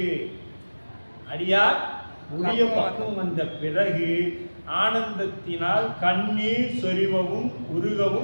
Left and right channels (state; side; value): inverted; both; correlation -1.00